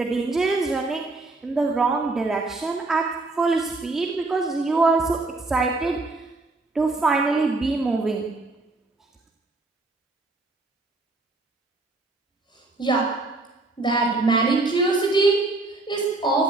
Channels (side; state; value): left; quieter; 3.2 dB